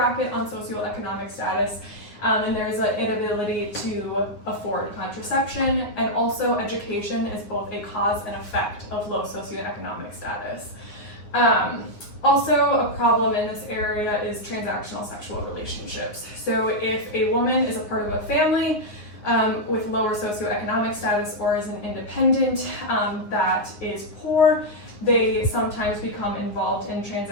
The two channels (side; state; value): right; late; 9.9 ms